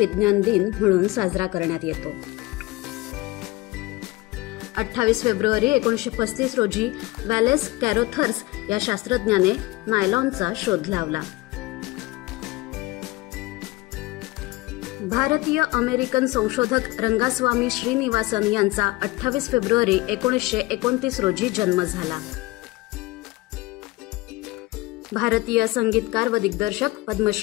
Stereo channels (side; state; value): right; quieter; 20.3 dB